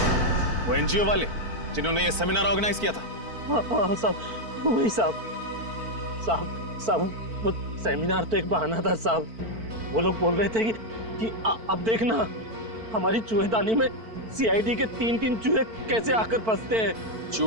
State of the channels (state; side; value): late; left; 4.5 ms